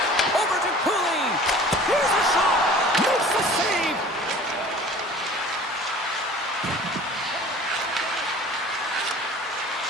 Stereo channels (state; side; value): normal; both; correlation 0.46